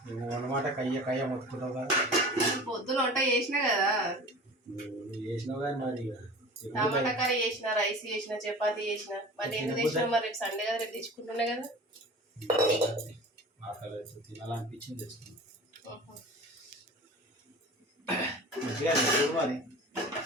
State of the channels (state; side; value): normal; both; correlation 0.39